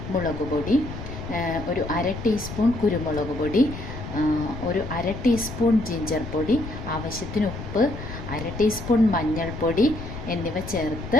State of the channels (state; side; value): noise; left; rumble, 9 dB below the sound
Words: മുളക് പൊടി, ഒരു 1/2 ടീസ്പൂൺ കുരുമുളക് പൊടി, ഒരു 1/2 ടീസ്പൂൺ ജിഞ്ചർ പൊടി, ആവശ്യത്തിന് ഉപ്പ്, 1/2 ടീസ്പൂൺ മഞ്ഞൾപ്പൊടി എന്നിവ ചേർത്ത്